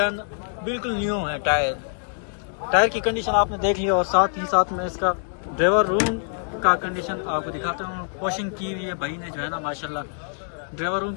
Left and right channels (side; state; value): right; silent; digital silence